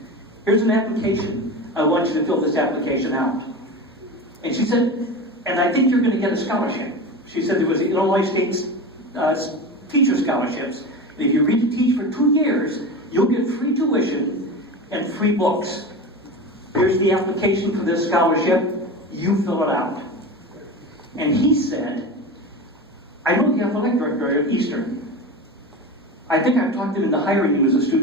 Here's an application. I want you to fill this application out." And she said, "And I think you're going to get a scholarship." She said there was Illinois State's teacher scholarships. And if you read to teach for 2 years, you'll get free tuition and free books. Here's the application for this scholarship. You fill it out. And he said, "I know the athletic director at Eastern. I think I've talked him into hiring you as a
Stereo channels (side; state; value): both; normal; correlation 0.27